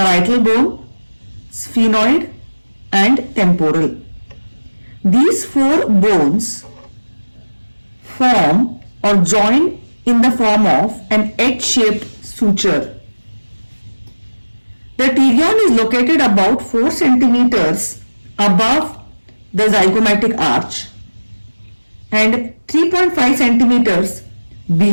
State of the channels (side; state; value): both; inverted; correlation -1.00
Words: bone, sphenoid, and temporal. These four bones form or join in the form of an H-shaped suture. The pterion is located about 4 centimeters above the zygomatic arch and 3.5 centimeters